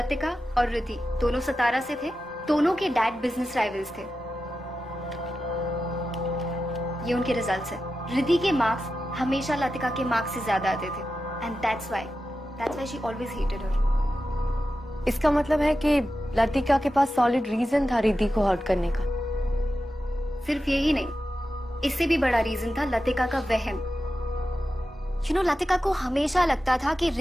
और रिद्धि दोनों सतारा से थे। दोनों के डैड बिजनेस राइवल्स थे। ये उनके रिजल्ट्स है। रिद्धि के मार्क्स हमेशा लतिका के मार्क्स से ज्यादा आते थे, and that's why she always hated her. इसका मतलब है कि लतिका के पास सॉलिड रीजन था रिद्धि को हर्ट करने का। सिर्फ यही नहीं, इससे भी बड़ा रीजन था लतिका का वहम। यू नो, लतिका को हमेशा लगता था कि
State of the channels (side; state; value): both; normal; correlation 0.92